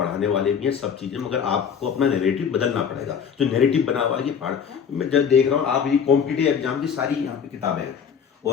वाले भी हैं सब चीज़ें, मगर आपको अपना नैरेटिव बदलना पड़ेगा। जो नैरेटिव बना हुआ है कि पहाड़, मैं जब देख रहा हूँ आप ये कॉम्पिटिटिव एग्जाम की सारी यहाँ पे किताबें हैं।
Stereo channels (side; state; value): right; quieter; 7.2 dB